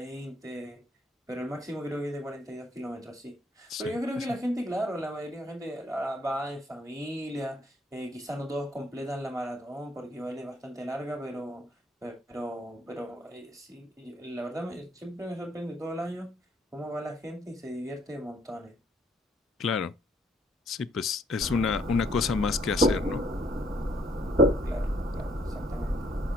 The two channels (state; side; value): normal; both; correlation 0.67